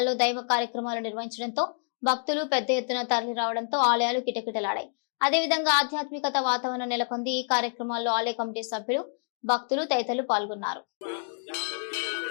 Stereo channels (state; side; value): silent; right; 59 dB below the other